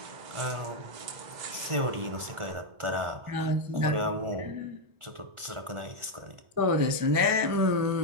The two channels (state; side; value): late; left; 1.4 ms